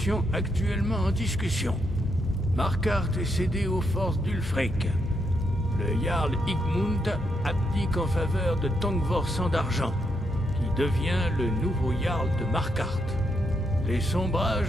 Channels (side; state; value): both; normal; correlation 0.79